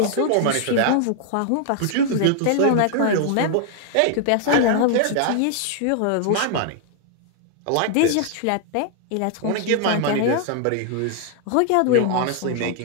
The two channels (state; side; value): different; both; correlation 0.00